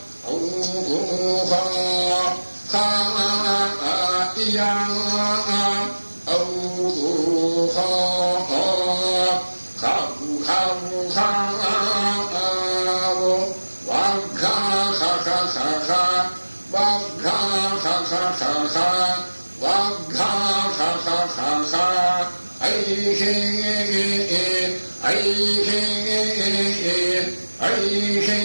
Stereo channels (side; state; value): both; inverted; correlation -1.00